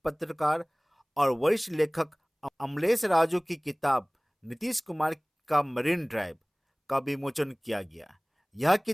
पत्रकार और वरिष्ठ लेखक अमलेश राजू की किताब नीतीश कुमार का मरीन ड्राइव का विमोचन किया गया। यह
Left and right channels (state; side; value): identical; both; correlation 1.00